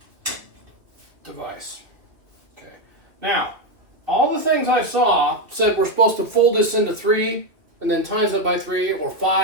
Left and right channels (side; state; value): left; late; 2.4 ms